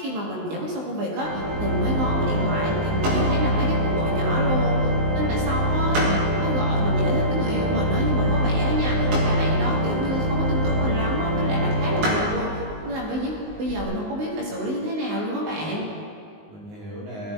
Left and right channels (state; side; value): late; left; 19 ms